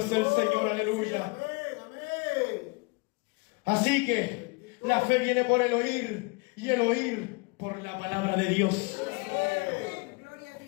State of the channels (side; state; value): right; quieter; 28.6 dB